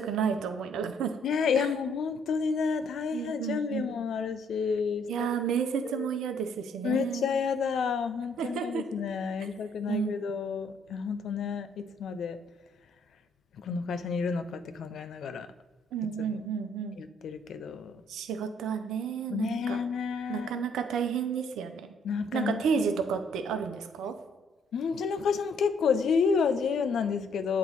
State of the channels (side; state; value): both; normal; correlation 0.66